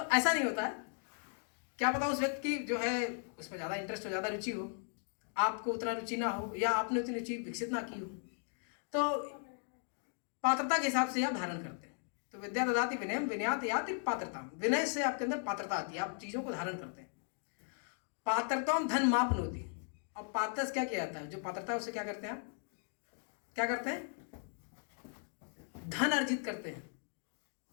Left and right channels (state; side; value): silent; right; 53 dB below the other